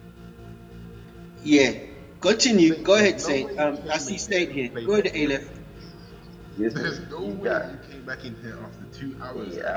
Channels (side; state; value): both; identical; correlation 1.00